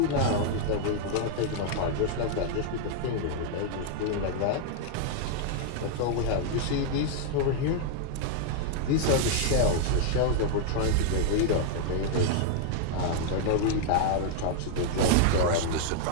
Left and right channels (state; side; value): different; both; correlation 0.00